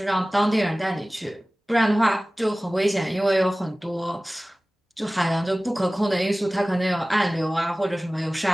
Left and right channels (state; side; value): normal; both; correlation 0.98